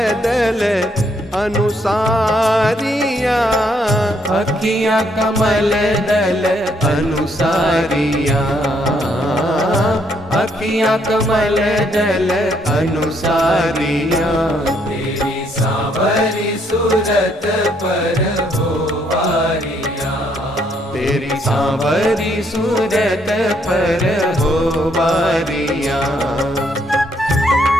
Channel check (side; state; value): both; normal; correlation 0.71